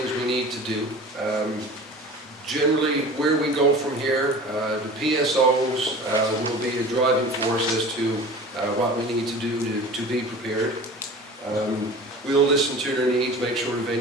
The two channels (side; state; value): both; normal; correlation 0.39